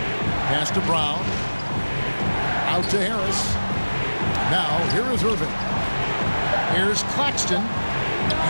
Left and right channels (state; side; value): inverted; both; correlation -1.00